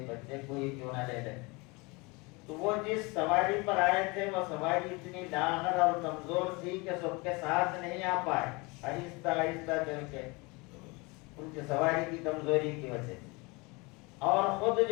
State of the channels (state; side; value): quieter; right; 26.6 dB